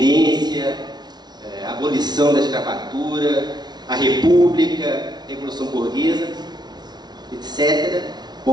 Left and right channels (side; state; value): left; late; 0.20 ms